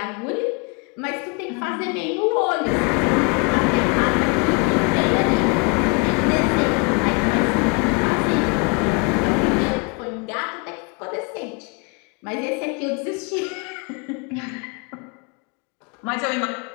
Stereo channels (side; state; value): right; quieter; 31.7 dB